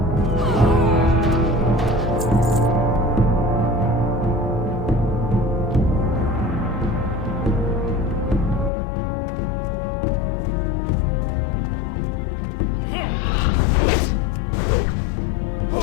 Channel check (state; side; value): drops out; right; at 8.7 s